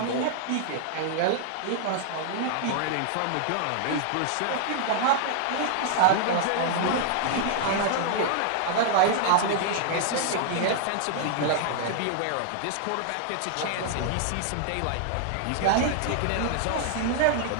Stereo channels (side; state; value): both; different; correlation -0.01